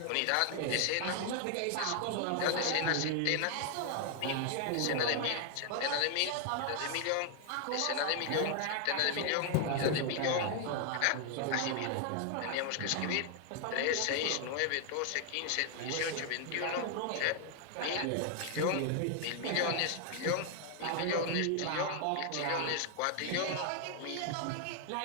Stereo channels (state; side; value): different; both; correlation 0.00